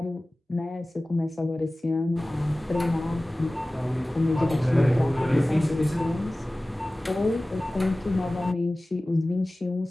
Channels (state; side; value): normal; both; correlation 0.97